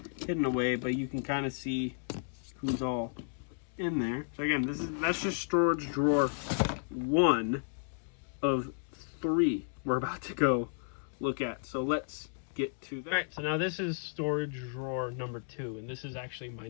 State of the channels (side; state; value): right; silent; digital silence